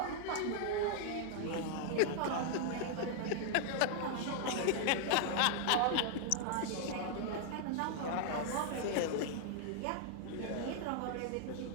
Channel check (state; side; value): different; both; correlation 0.00